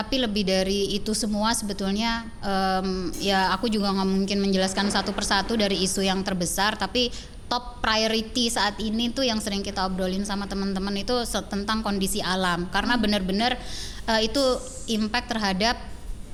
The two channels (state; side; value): identical; both; correlation 1.00